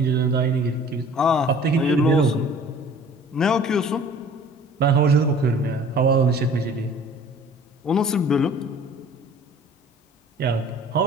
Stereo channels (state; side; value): normal; both; correlation 0.48